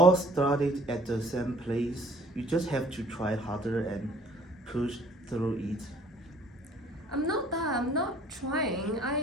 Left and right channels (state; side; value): normal; both; correlation 0.56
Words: started at the same place. You just have to try harder and push through it. I'm not trying.